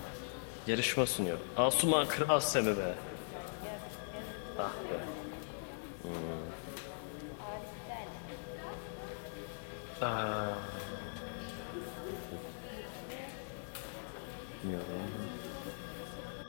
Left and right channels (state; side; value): silent; right; digital silence